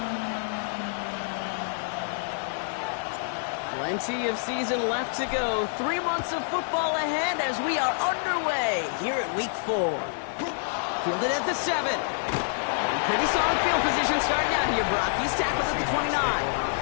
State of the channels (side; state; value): right; silent; digital silence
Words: Plenty of season left to go. 3 months of football ahead as we are underway here at Week 4. Fielded at the 7. Pretty solid field position starting out here, Brock. He's tackled at the 29.